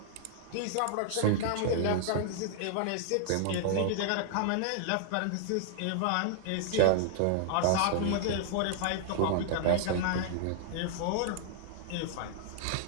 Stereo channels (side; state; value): both; different; correlation -0.01